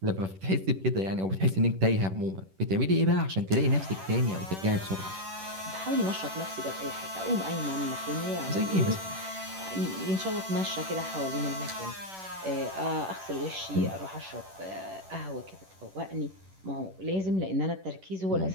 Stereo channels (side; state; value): left; late; 10 ms